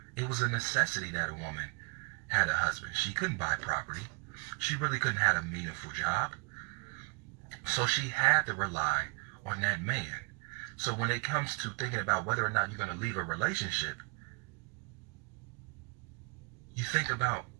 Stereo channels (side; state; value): left; quieter; 34.6 dB